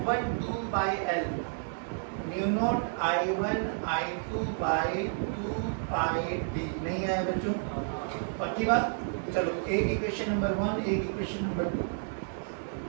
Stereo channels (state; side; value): silent; left; digital silence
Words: 2 by L mu naught I1 I2 by 2 pi D. नहीं आया बच्चों? पक्की बात? चलो एक इक्वेशन नंबर 1, एक इक्वेशन नंबर 2।